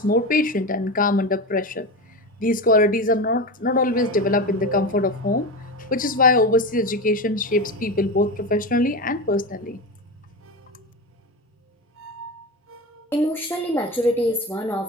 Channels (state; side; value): normal; both; correlation 0.22